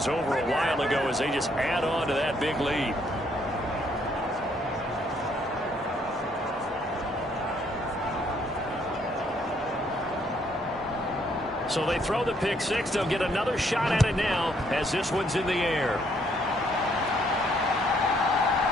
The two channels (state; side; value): normal; both; correlation 0.68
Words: over a while ago as they just add on to that big lead. So they throw the pick six. They'll get another shot at it now as this one's in the air.